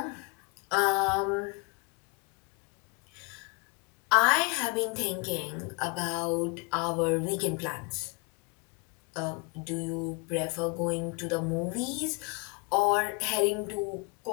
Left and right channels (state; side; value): quieter; right; 30.9 dB